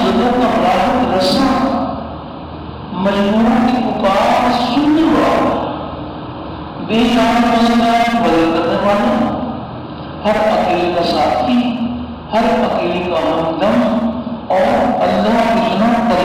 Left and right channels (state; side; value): identical; both; correlation 1.00